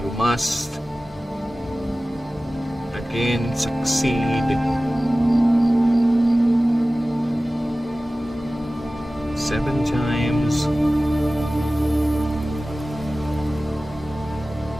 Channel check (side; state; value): both; normal; correlation 0.96